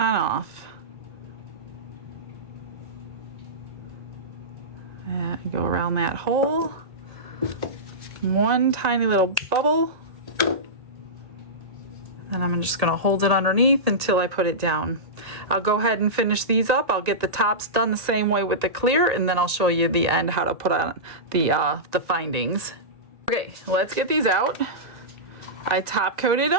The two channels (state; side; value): late; left; 1.9 ms